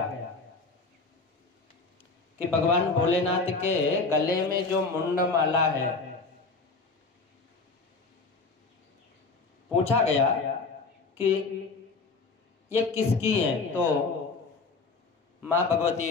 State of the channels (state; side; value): quieter; right; 4.0 dB